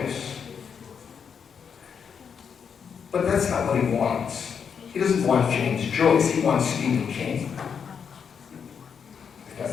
But that's not what he wants. He doesn't want James Joyce, he wants Stephen King. If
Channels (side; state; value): right; quieter; 6.9 dB